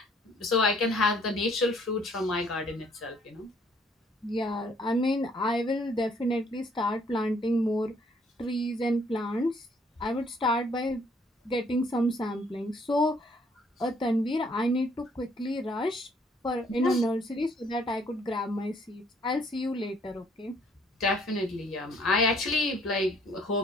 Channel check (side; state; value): both; normal; correlation 0.63